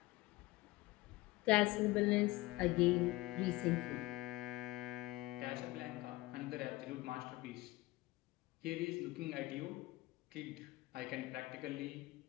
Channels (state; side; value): quieter; right; 20.0 dB